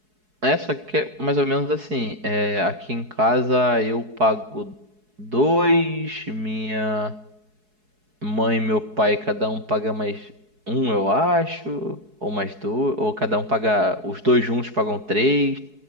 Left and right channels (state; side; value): late; left; 4.7 ms